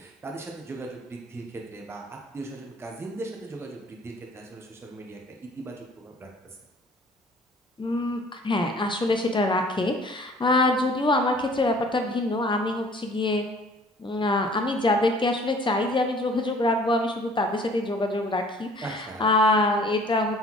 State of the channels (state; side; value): normal; both; correlation 0.52